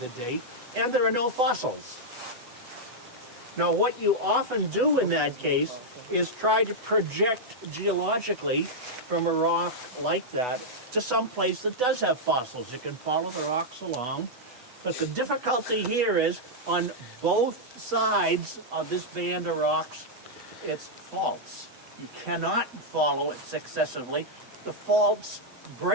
date, and there are no fossils. Now, what you often do in that case is try to project geologically from a rock like that to some place that does have fossils. You can follow the rocks along, but the difficulty here is on both sides of this band of rocks, it's faults. You cannot follow it successively. The faults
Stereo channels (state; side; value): late; left; 8.1 ms